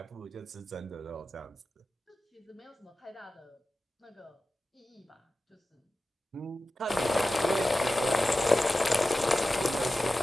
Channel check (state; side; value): normal; both; correlation 0.94